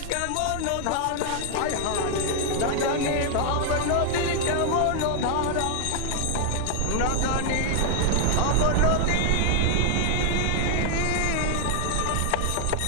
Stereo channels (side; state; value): both; different; correlation 0.00